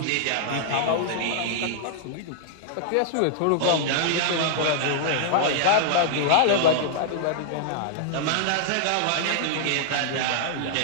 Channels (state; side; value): different; both; correlation -0.01